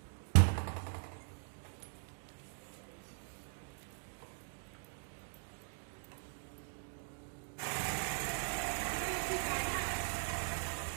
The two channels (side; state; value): left; silent; 51 dB below the other